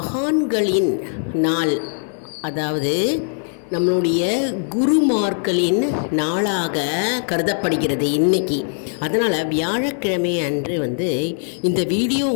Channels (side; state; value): right; silent; 65 dB below the other